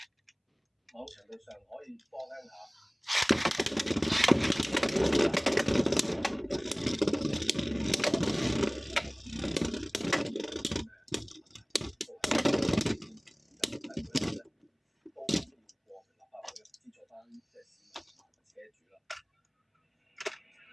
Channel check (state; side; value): identical; both; correlation 1.00